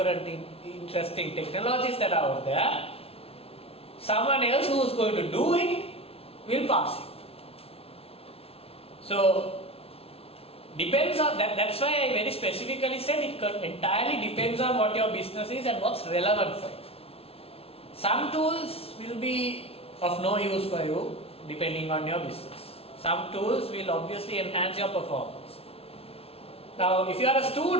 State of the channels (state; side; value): late; right; 0.28 ms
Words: interesting technologies that are out there, someone else who is going to do it will pass you. So, depends on that's why I very specifically said it entirely depends on what your business is and what's relevant for you. Some tools will be of no use for you depending on your business. Some tools will obviously enhance your performance. Now, if you are a